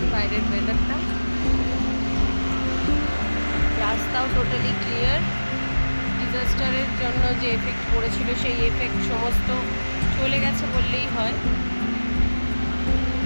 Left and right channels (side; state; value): both; inverted; correlation -1.00